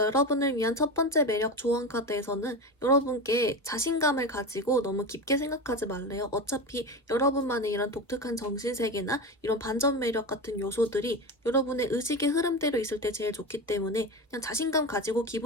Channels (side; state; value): both; normal; correlation 0.23